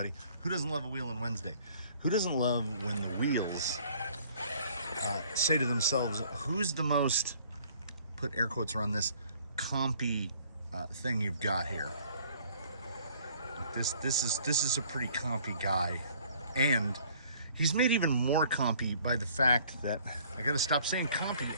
Who doesn't love a Wheelin' Wednesday? Who doesn't love when the wheels say to themselves, who's the most, put air quotes around this, compy thing you've got here? This is a pretty compy guy. And he's made even more compy by the fact that, I gotta stop saying compy,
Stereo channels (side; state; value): both; inverted; correlation -0.57